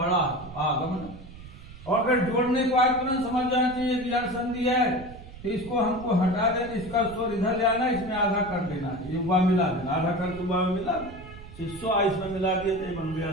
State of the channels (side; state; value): right; noise; rumble, 16 dB below the sound